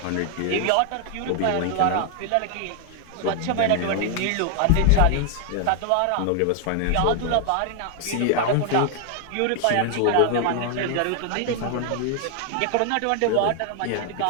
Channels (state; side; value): different; both; correlation 0.00